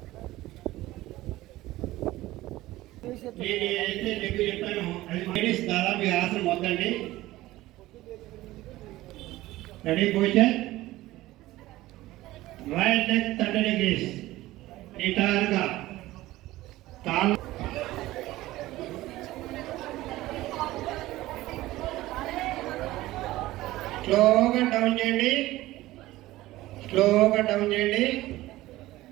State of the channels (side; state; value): left; quieter; 17.0 dB